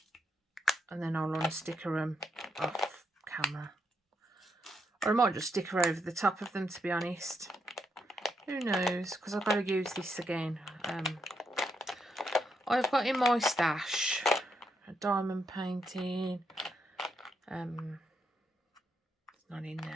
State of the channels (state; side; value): normal; both; correlation 0.80